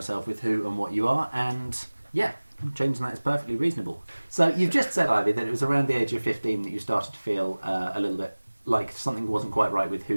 with who and what you are, and yeah, changing that is perfectly reasonable. So you've just said, Ivy, that it was around the age of 15 that you started to feel a little bit like something wasn't quite right with who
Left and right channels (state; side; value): inverted; both; correlation -1.00